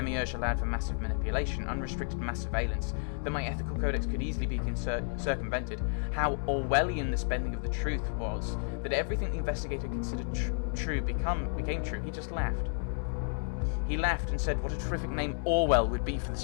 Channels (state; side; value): silent; right; 57 dB below the other